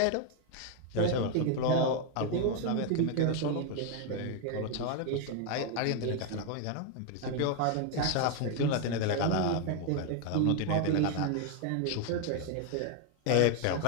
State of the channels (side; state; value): both; different; correlation 0.00